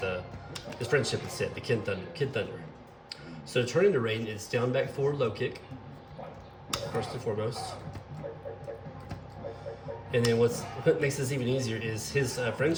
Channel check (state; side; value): identical; both; correlation 1.00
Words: friendship instead, the Kid Thunder. So to turn into Raiden, it's down, back, forward, low kick, first and foremost. And then what makes this even easier is his